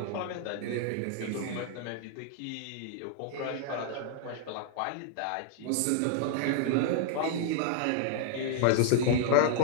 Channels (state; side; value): different; both; correlation 0.00